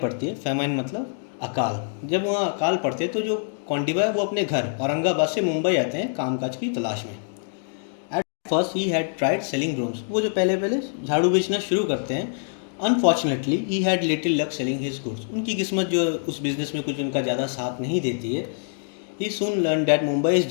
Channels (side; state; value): right; silent; digital silence